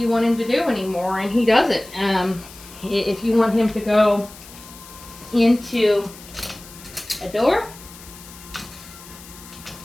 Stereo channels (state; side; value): noise; left; hiss, 18 dB below the sound